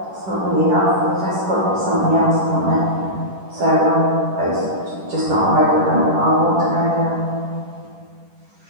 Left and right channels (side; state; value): left; late; 10 ms